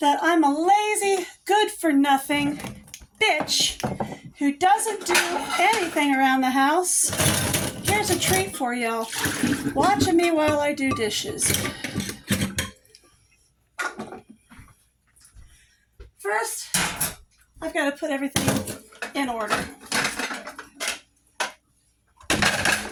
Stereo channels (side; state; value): both; identical; correlation 1.00